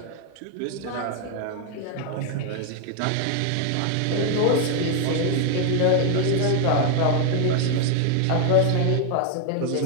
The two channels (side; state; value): both; different; correlation 0.01